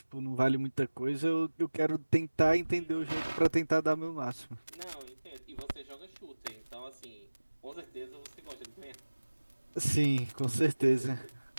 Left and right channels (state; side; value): inverted; both; correlation -1.00